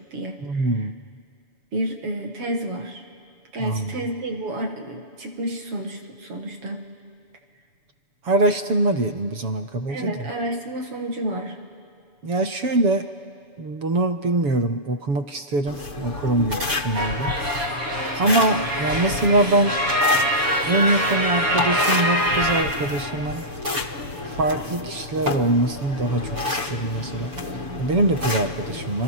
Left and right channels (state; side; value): late; left; 6.9 ms